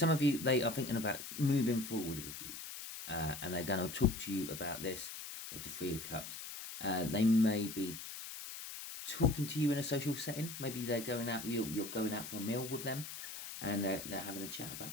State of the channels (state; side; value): noise; left; hiss, 9 dB below the sound